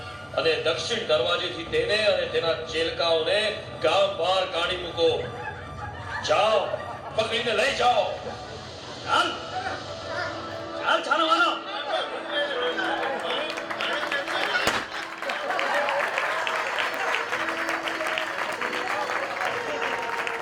અને દક્ષિણ દરવાજેથી તેને અને તેના ચેલકાઓને ગામ બહાર કાઢી મૂકો. જાઓ, પકડીને લઈ જાઓ. ચાલ ચાલ છાનવાનો.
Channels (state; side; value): identical; both; correlation 1.00